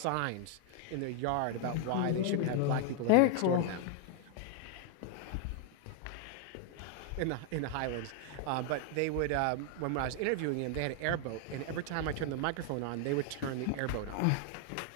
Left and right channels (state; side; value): different; both; correlation 0.00